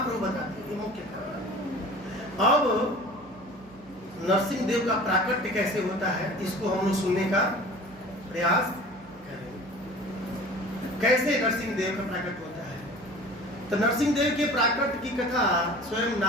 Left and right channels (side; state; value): right; noise; hum, 25 dB below the sound